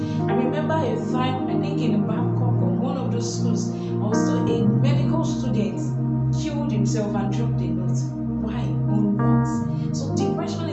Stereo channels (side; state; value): both; identical; correlation 1.00